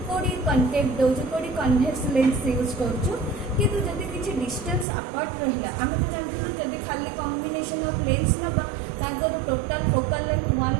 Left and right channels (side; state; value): left; drops out; at 4.9 s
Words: कोडी कॉन्केव दोछु कोडी कन्वेक्स लेंस यूज करछु किंतु जदी किछि डिस्टेंस अपार्ट रहला हमें तो जानथिलु जदी खाली कॉम्बिनेशन ऑफ लेंस नबा ताकर total focal length